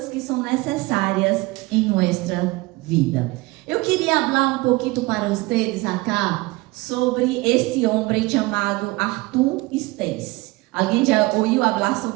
que são necessárias em nossa vida. Eu queria falar um pouquinho para vocês acá sobre este homem chamado Arthur Stace. Alguém já ouviu falar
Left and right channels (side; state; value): left; quieter; 22.1 dB